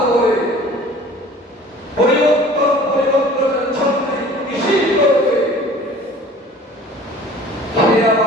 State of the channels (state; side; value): normal; both; correlation 0.47